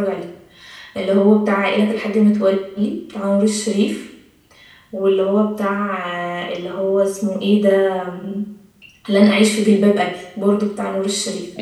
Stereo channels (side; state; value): both; identical; correlation 1.00